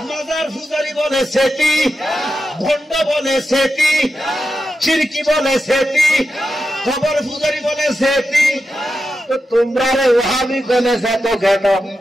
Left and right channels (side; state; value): both; normal; correlation 0.89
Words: মাজার পূজারি বলে সেতি, ভণ্ড বলে সেতি, শিরকি বলে সেতি, কবর পূজারি বলে সেতি। তো তোমরা ওহাবি বলে সেত কেন?